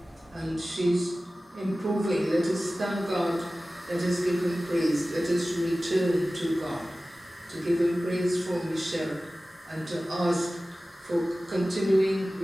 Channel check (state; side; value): normal; both; correlation 0.96